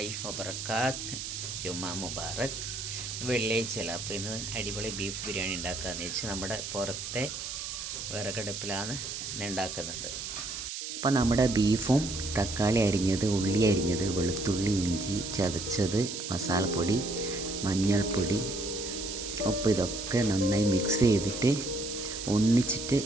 വബർക്കാത്ത്. ജുമാ മുബാറക്. വെള്ളിയാഴ്ചയല്ല, അപ്പോൾ ഇന്ന് അടിപൊളി ബീഫ് ബിരിയാണി ഉണ്ടാക്കാമെന്ന് വെച്ച് നമ്മുടെ പുറത്തെ വിറകടുപ്പിലാണ് ഇന്ന് ഉണ്ടാക്കുന്നത്. അപ്പോൾ നമ്മുടെ ബീഫും തക്കാളി അരിഞ്ഞത്, ഉള്ളി അരിഞ്ഞത്, വെളുത്തുള്ളി, ഇഞ്ചി ചതച്ചത്, മസാലപ്പൊടി, മഞ്ഞൾപ്പൊടി, ഉപ്പ് ഇതൊക്കെ നന്നായി മിക്സ് ചെയ്തിട്ട് ഒന്നിച്ചിട്ട്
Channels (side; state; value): right; noise; hiss, 6 dB below the sound